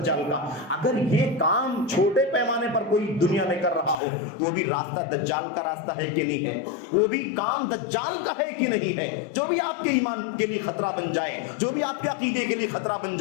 کا۔ اگر یہ کام چھوٹے پیمانے پر کوئی دنیا میں کر رہا ہو تو وہ بھی راستہ دجال کا راستہ ہے کہ نہیں ہے، وہ بھی کام دجال کا ہے کہ نہیں ہے۔ جو بھی آپ کے ایمان کے لیے خطرہ بن جائے، جو بھی آپ کے عقیدے کے لیے خطرہ بن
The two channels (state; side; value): drops out; right; at 4.0 s